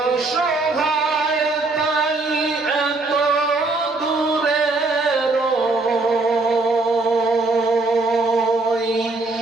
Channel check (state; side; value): quieter; left; 3.3 dB